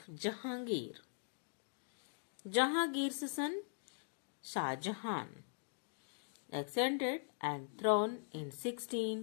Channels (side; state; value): right; silent; digital silence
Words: Jahangir. Jahangir's son Shah Jahan ascended and throne in